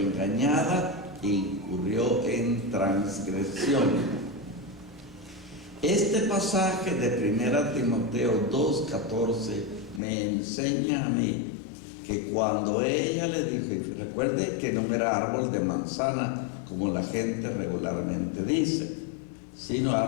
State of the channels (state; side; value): drops out; right; at 10.0 s